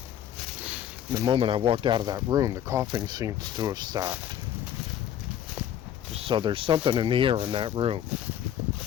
The moment I walked out of that room, the coughing seems to have stopped. So there's something in the air in that room.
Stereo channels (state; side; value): quieter; right; 10.4 dB